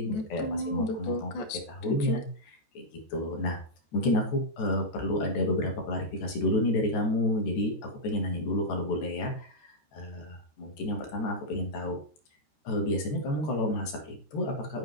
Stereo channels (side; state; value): right; late; 14 ms